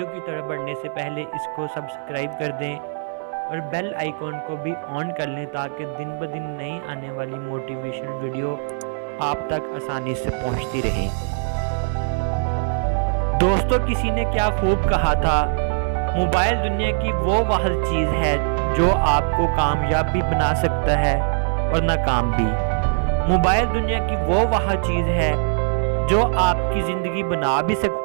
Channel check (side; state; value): left; silent; 64 dB below the other